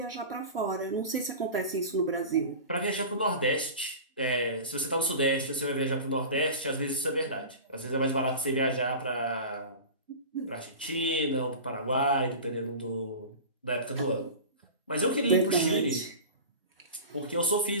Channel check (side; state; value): both; inverted; correlation -0.33